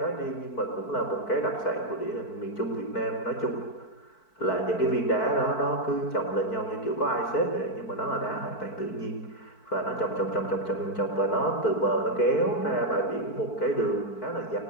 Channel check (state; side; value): late; right; 4.5 ms